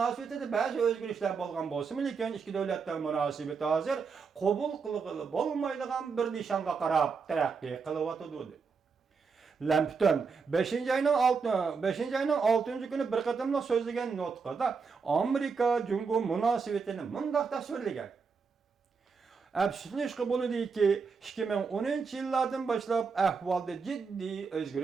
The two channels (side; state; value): left; quieter; 5.3 dB